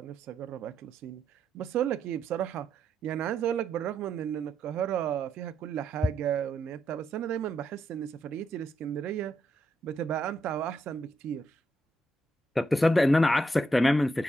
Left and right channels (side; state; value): both; normal; correlation 0.80